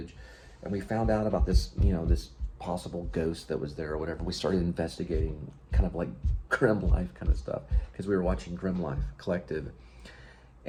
And we found out about this, this possible ghost that was there or whatever. We started investigating kind of like Grim Life kind of stuff, because we were watching Grim Life Collective.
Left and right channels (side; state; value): both; identical; correlation 1.00